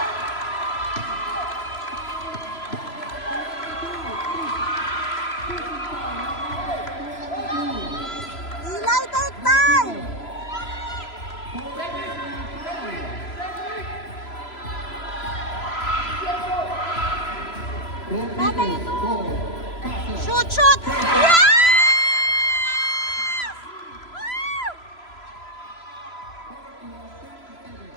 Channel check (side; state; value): right; late; 3.0 ms